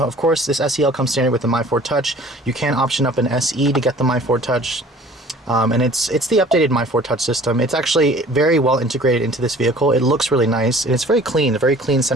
course, this SEL comes standard with the My Ford Touch. You can option up an SE to get the My Ford Touch, and it's the updated My Ford Touch system. It's actually very well integrated into this vehicle. It looks really nice, and it's very clean, a very clean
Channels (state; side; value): normal; both; correlation 0.49